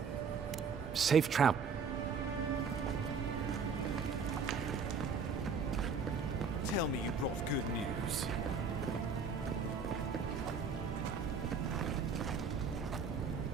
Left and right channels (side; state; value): left; quieter; 5.2 dB